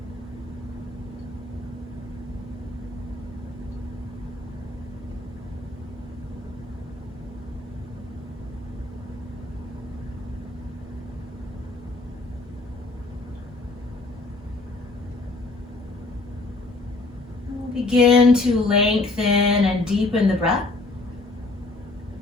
We'll begin to lengthen and deepen the breath.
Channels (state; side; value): quieter; right; 3.1 dB